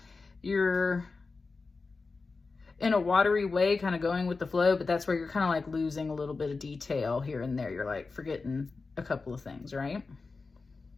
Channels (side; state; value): right; quieter; 4.1 dB